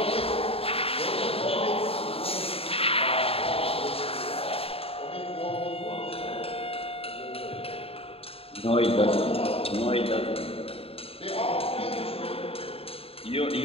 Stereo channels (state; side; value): late; right; 0.28 ms